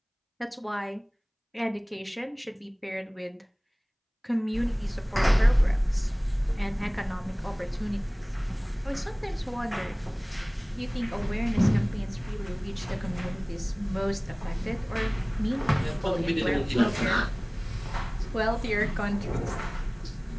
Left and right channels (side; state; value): both; identical; correlation 1.00